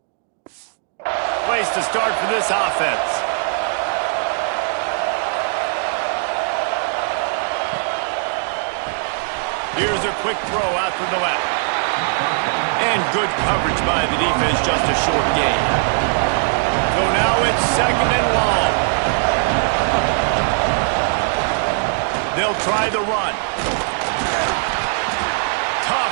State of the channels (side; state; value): left; silent; 57 dB below the other